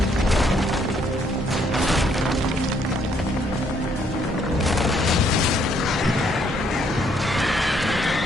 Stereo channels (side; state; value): both; normal; correlation 0.69